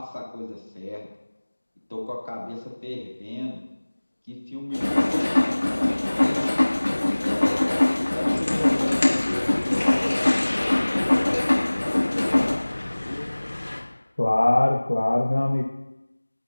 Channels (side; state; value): both; inverted; correlation -1.00